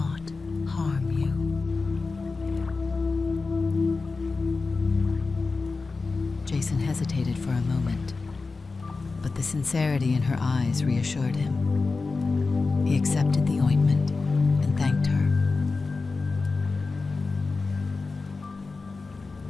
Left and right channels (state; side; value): quieter; right; 4.0 dB